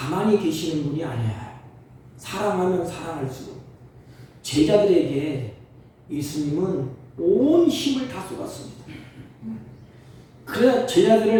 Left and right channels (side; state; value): both; identical; correlation 1.00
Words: 계시는 분이 아니에요. 사랑하면 사랑할수록 제자들에게 예수님은 온 힘을 다 쏟았습니다. 그래